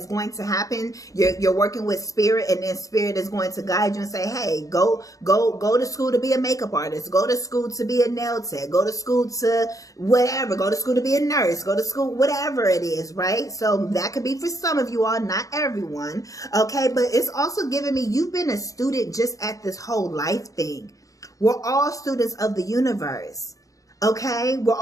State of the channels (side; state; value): right; late; 0.16 ms